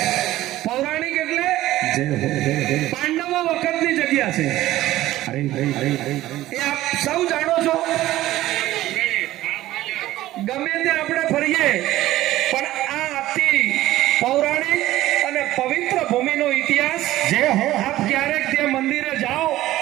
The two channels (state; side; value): quieter; left; 15.4 dB